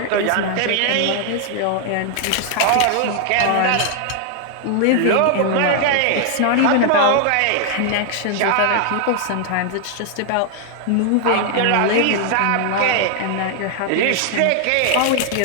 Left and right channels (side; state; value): both; different; correlation 0.00